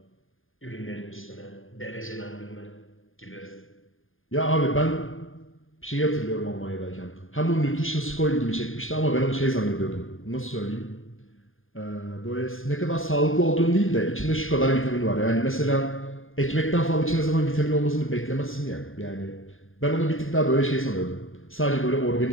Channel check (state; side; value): late; right; 0.59 ms